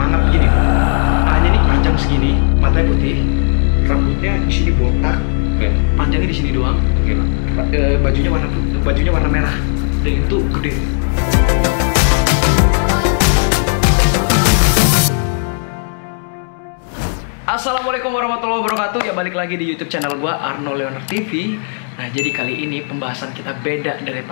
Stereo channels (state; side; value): silent; right; digital silence